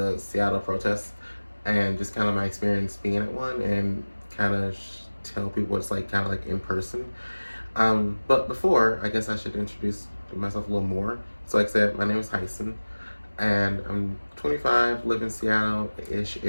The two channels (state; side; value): inverted; both; correlation -1.00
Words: Seattle protests and just kind of my experience being at one and kind of tell people what it's like, kind of like in person. But before, I guess I should introduce myself a little more. So, like I said, my name is Tyson, and I'm 25, live in Seattle-ish